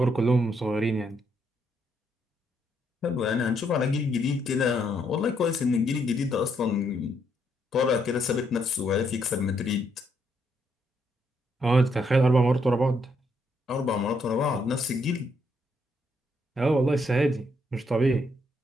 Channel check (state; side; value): normal; both; correlation 0.74